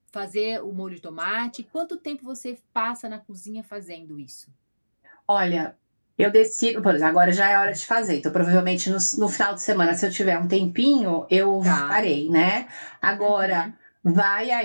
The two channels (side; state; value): both; inverted; correlation -1.00